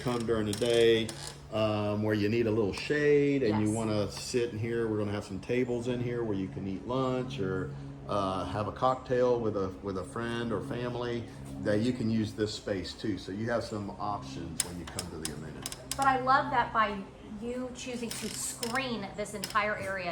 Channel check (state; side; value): identical; both; correlation 1.00